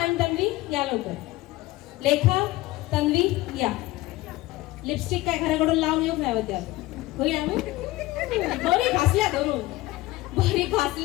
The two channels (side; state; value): right; quieter; 18.7 dB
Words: तन्वी या लवकर. लेखा, तन्वी या. लिपस्टिक काय घराकडून लावून येऊ नाही होत्या. होईल बरी घासल्या धरून, बरी